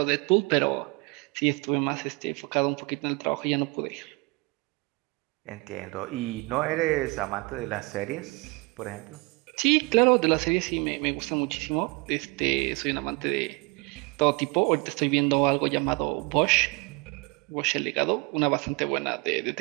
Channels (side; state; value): left; quieter; 27.8 dB